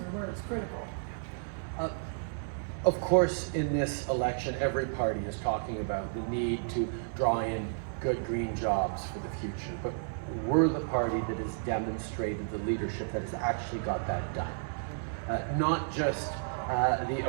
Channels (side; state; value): left; silent; digital silence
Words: where it's critical? Of course, in this election, every party is talking about the need to draw in good green jobs for the future, but we're the party that has demonstrated the leadership that has actually got that done. Not just the